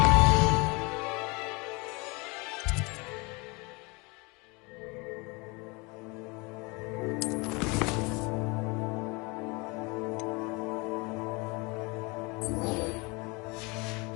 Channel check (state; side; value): quieter; right; 27.6 dB